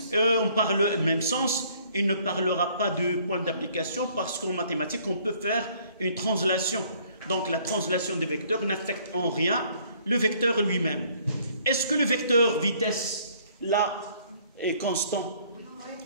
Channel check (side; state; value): both; inverted; correlation -0.60